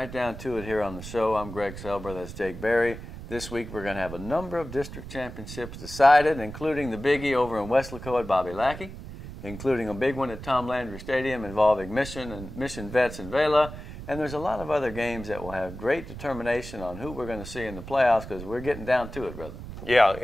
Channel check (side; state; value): right; noise; rumble, 11 dB below the sound